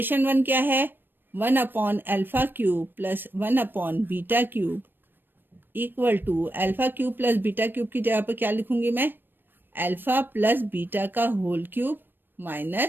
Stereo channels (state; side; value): late; left; 0.095 ms